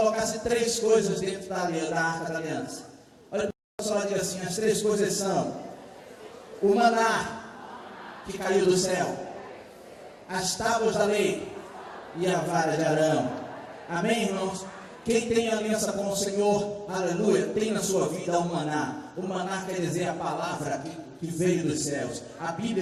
3 coisas dentro da arca da aliança. Olha, o pessoal diz assim, as 3 coisas são o maná que caiu do céu, as tábuas da lei e a vara de Arão. Amém, irmãos? Quem tem aliança com o Senhor, aleluia, tem na sua vida o maná. O maná quer dizer a palavra que veio dos céus, a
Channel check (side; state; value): both; identical; correlation 1.00